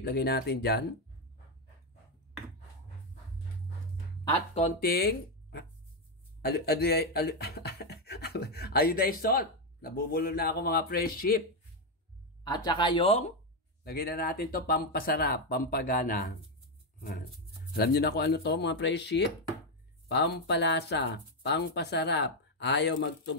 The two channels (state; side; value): normal; both; correlation 0.05